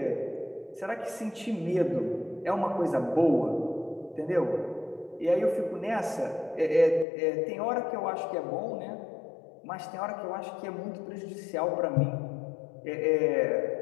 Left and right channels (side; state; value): right; drops out; at 7.1 s